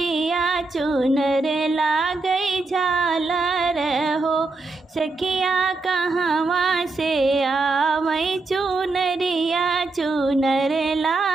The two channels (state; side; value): quieter; left; 3.5 dB